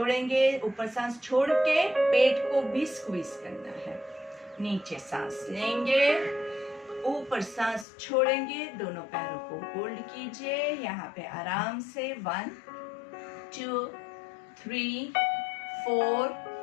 ऊपर सांस छोड़ के पेट को भी स्क्वीज करना है। नीचे सांस लेंगे, ऊपर सांस छोड़ेंगे, दोनों पैरों को होल्ड कीजिए यहाँ पे आराम से। 1 2 3 4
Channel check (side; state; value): right; drops out; at 7.9 s